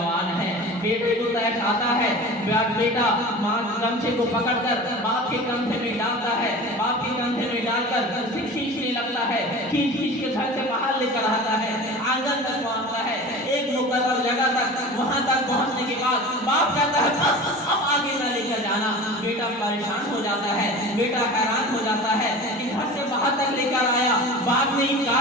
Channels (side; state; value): both; normal; correlation 0.36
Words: ہے، بیٹے کو تیش آتا ہے، بیٹا ماں گمچے کو پکڑ کر باپ کے کندھے میں ڈالتا ہے، باپ کے کندھے میں ڈال کر کھینچنے لگتا ہے، کھینچ کے گھر سے باہر لے کر آتا ہے، آنگن تک پہنچتا ہے، ایک مقرر جگہ تک، وہاں تک پہنچنے کے بعد باپ کہتا ہے بس اب آگے نہ لے کر جانا۔ بیٹا پریشان ہو جاتا ہے، بیٹا حیران ہو جاتا ہے کہ گھر سے باہر تک لے کر آیا، باپ نے